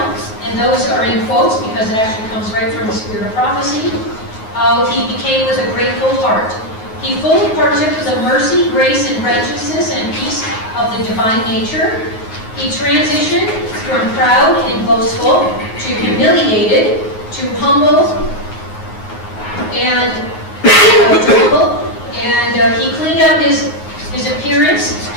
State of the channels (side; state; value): right; late; 9.4 ms